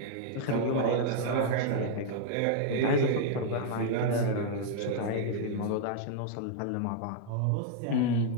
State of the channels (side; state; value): both; different; correlation 0.00